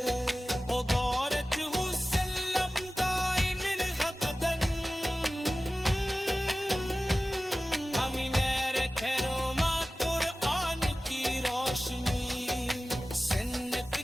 وبارك وسلم دائم ابدا امین رکھے روما قرآن کی روشنی، سنت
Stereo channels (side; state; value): both; normal; correlation 0.96